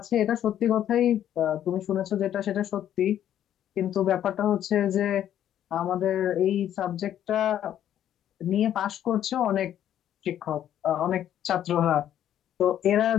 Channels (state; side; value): quieter; right; 10.9 dB